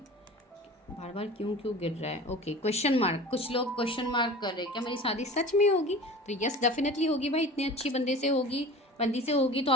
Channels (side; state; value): both; normal; correlation 0.38